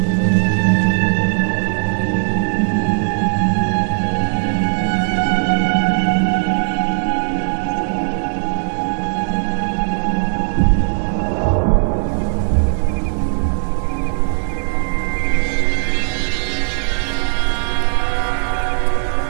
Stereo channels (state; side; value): silent; left; digital silence